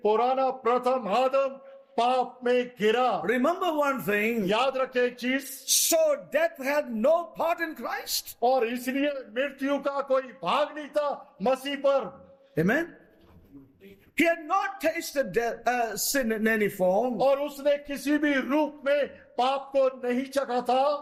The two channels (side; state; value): both; identical; correlation 1.00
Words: पुराना प्रथम आदम पाप में गिरा। Remember one thing. याद रखें एक चीज, So death had no part in Christ. और इसलिए मृत्यु का कोई भाग नहीं था मसीह पर। Amen. He had not tasted death, sin in any form. और उसने किसी भी रूप में पाप को नहीं चखा